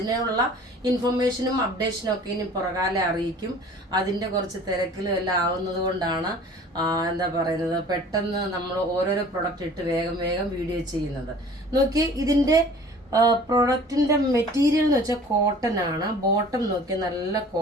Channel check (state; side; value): normal; both; correlation 0.47